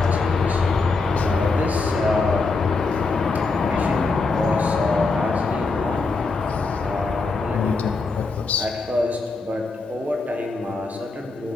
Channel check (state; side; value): quieter; right; 3.9 dB